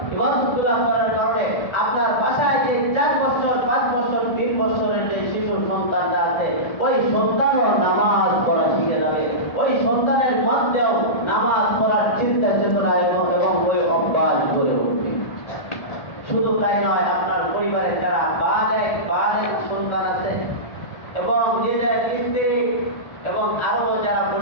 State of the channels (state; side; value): late; right; 1.8 ms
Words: ইবাদতগুলা করার কারণে আপনার বাসায় যে 4 বছর 5 বছর 3 বছরের যে শিশু সন্তানটা আছে, ওই সন্তানও নামাজ পড়া শিখে যাবে। ওই সন্তানের মধ্যেও নামাজ পড়ার চিন্তা চেতনা এবং ওই অভ্যাস গড়ে উঠবে। শুধু তাই নয়, আপনার পরিবারে যারা বালেগ সন্তান আছে এবং নিজের স্ত্রী এবং আরো যারা